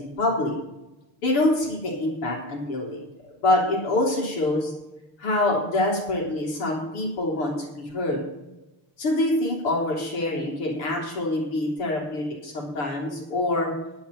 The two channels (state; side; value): late; right; 6.9 ms